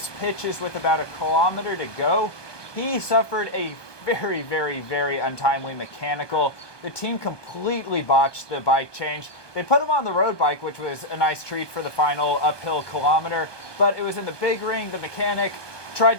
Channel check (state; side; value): late; right; 1.2 ms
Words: pitches with about a kilometer to go, he suffered a very untimely mechanical. The team completely botched the bike change. They put him on the road bike, which was a nice treat for the final uphill kilometer, but it was in the big ring. The mechanic tried